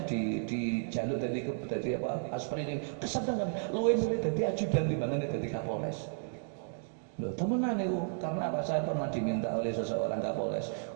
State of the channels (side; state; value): left; silent; digital silence